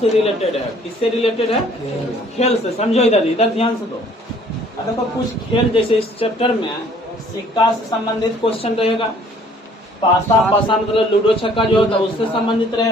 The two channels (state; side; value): normal; both; correlation 0.58